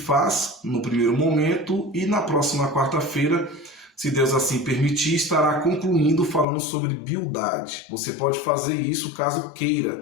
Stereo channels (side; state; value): right; drops out; at 6.5 s